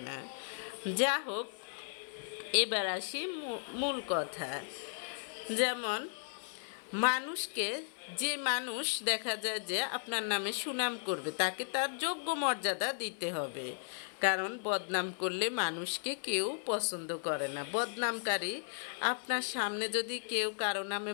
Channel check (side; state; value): right; silent; 54 dB below the other